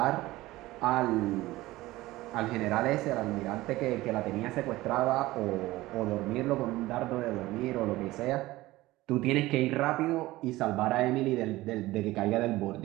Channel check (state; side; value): quieter; left; 18.1 dB